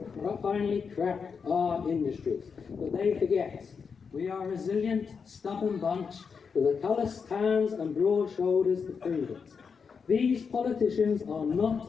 finally crack our industries. But they forget we are a resilient, stubborn bunch with a calloused hands and broad shoulders to prove it. These politicians are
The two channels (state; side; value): quieter; right; 5.8 dB